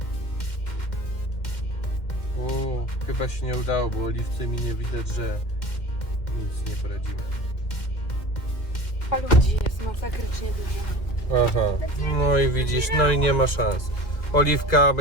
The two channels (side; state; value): right; late; 2.1 ms